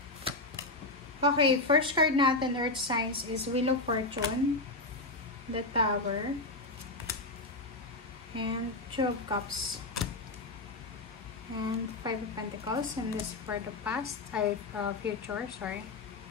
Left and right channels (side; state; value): right; quieter; 3.0 dB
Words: Okay, first card natin, Earth Signs, is Wheel of Fortune, the Tower, and Two of Cups, and Five of Pentacles, and this for the past, future, sorry.